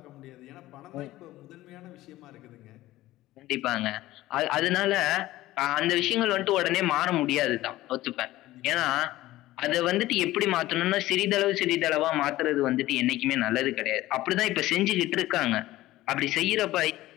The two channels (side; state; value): right; quieter; 16.4 dB